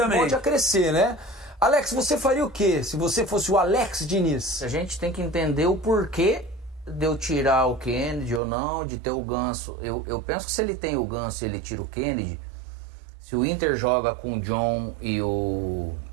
pode a crescer, né? Alex, você faria o quê se você fosse o Alex Diniz? A gente tem que entender o porquê de eu tirar o Kennedy ou não, de ter o Ganso. Eu penso que se ele tem o Ganso e ele tira o Kennedy, se o Inter joga com o John e o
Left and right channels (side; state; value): left; drops out; at 8.4 s